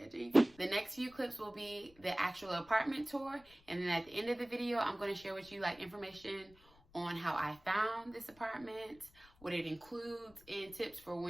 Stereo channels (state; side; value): noise; left; rumble, 26 dB below the sound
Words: Jesus. The next few clips will be the actual apartment tour. And then at the end of the video, I'm going to share with you like information on how I found this apartment, what it includes, and tips for